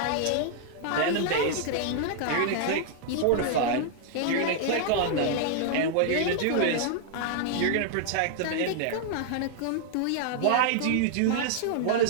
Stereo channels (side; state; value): both; different; correlation -0.01